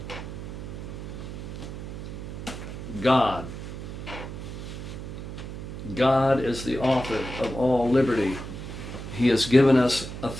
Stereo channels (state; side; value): noise; right; hum, 8 dB below the sound